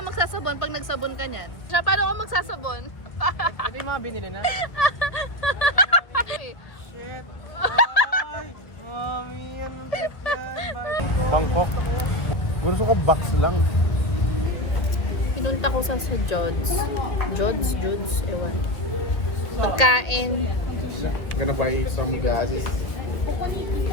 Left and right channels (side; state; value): right; late; 1.6 ms